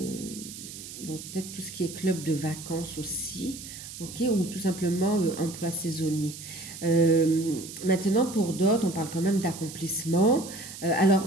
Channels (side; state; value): right; noise; hiss, 12 dB below the sound